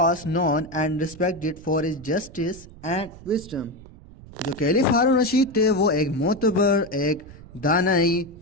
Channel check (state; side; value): noise; right; rumble, 19 dB below the sound